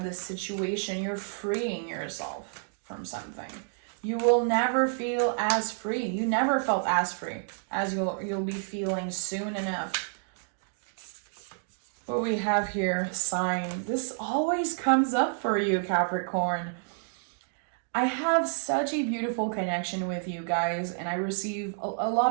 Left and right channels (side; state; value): left; silent; 58 dB below the other